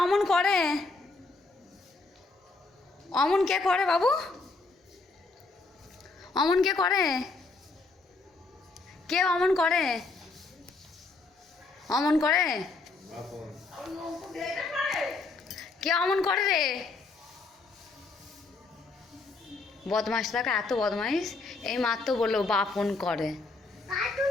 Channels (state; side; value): quieter; right; 3.7 dB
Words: অমন করে? অমন কে করে বাবু? অমন কে করে? কে অমন করে? অমন করে? কে অমন করে রে? বদমাস থাকে, এত বদমাইশ। এই মাত্র বললো বাপন করে।